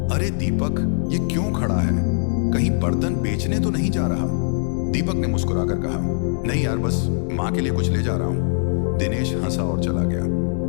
अरे दीपक, ये क्यों खड़ा है? कहीं बर्तन बेचने तो नहीं जा रहा? दीपक ने मुस्कुराकर कहा, नहीं यार, बस माँ के लिए कुछ ले जा रहा हूँ। दिनेश हंसा और चला गया।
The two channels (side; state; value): right; silent; 64 dB below the other